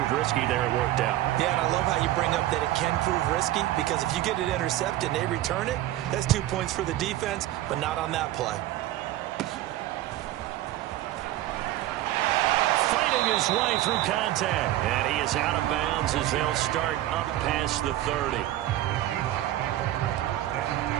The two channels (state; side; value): quieter; left; 14.6 dB